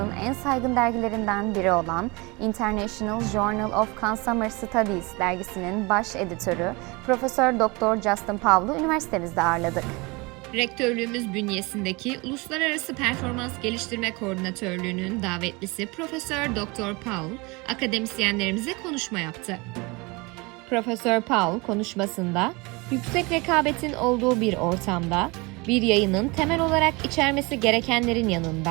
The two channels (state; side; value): quieter; left; 26.2 dB